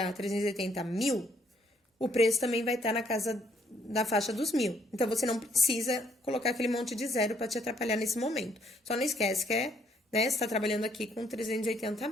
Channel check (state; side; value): normal; both; correlation 0.68